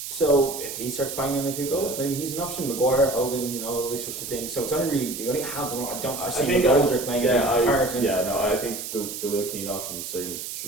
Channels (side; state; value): right; noise; hiss, 7 dB below the sound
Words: So if he starts banging a few goals, maybe he's an option. Maguire, Hogan, all these sorts of things. So it's only really you only have them. I don't foresee McGoldrick playing a big part. I think the Will Keane option certainly